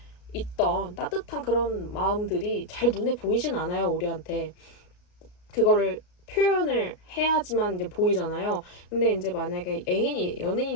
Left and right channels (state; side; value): late; right; 33 ms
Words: 있던 따뜻한 그런 마음들이 잘 눈에 보이진 않아요, 우리한테. 그거를 표현을 해야지만 이제 보이잖아요. 근데 이제 만약에